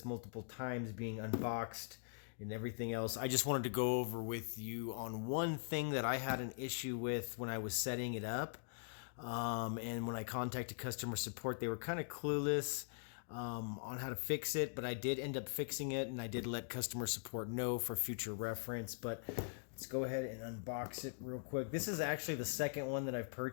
multiple times being unboxed and everything else. I just wanted to go over with you on one thing that I had an issue with when I was setting it up. And when I contacted customer support, they were kind of clueless on how to fix it, but I did end up fixing it, and I did let customer support know for future reference. But let's go ahead and unbox it real quick. This is actually the second one that I've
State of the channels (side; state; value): right; silent; digital silence